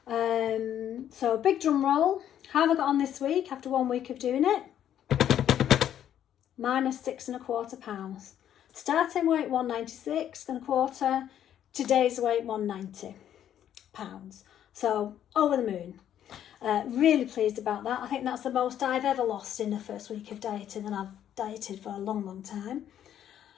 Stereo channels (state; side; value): quieter; right; 10.4 dB